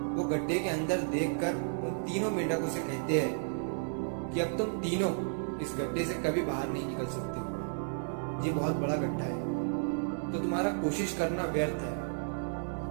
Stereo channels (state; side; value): silent; left; digital silence